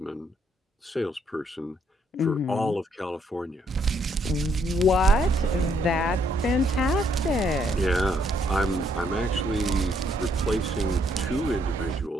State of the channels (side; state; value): both; normal; correlation 0.71